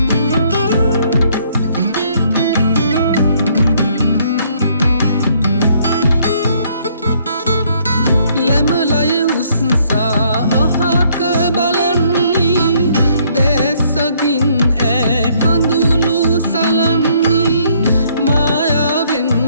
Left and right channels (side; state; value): both; inverted; correlation -0.66